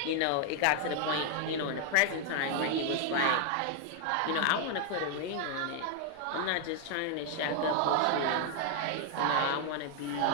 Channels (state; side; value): different; both; correlation 0.00